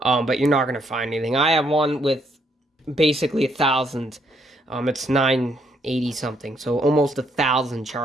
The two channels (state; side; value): normal; both; correlation 0.72